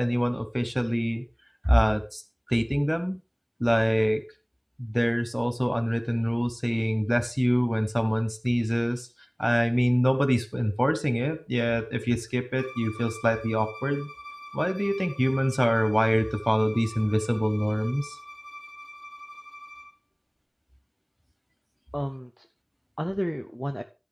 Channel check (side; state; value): both; identical; correlation 1.00